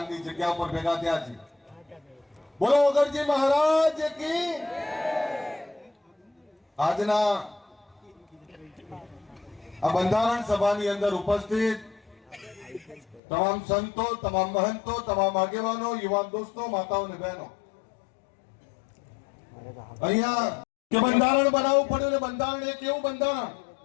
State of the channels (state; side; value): drops out; right; at 13.2 s